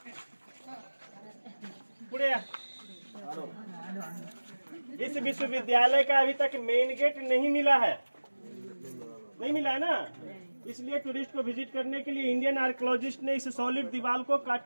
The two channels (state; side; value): inverted; both; correlation -1.00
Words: पुड़े। इस विश्वविद्यालय का अभी तक मेन गेट नहीं मिला है, नहीं मिला है ना? इसलिए टूरिस्ट को विजिट करने के लिए इंडियन आर्कियोलॉजिस्ट ने इस सॉलिड दीवार को काट